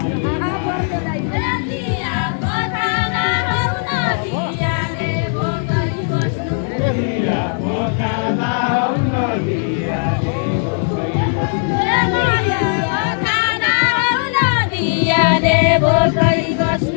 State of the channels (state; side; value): silent; right; 62 dB below the other